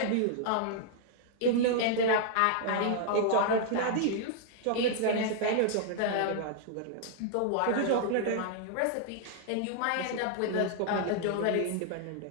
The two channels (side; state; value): both; different; correlation -0.01